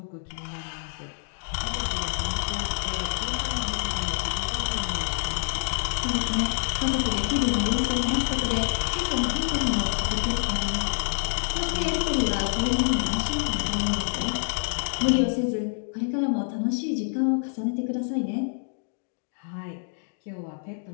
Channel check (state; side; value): silent; right; digital silence